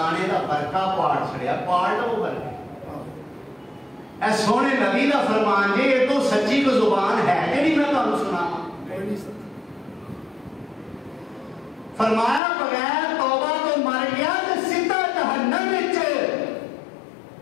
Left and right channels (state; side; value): drops out; right; at 12.4 s